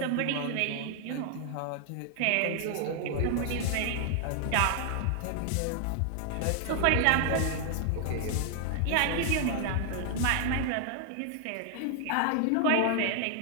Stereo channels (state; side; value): different; both; correlation 0.00